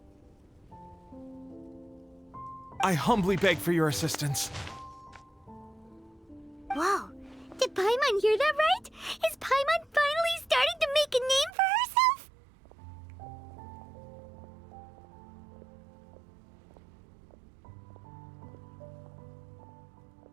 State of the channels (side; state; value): left; drops out; at 11.5 s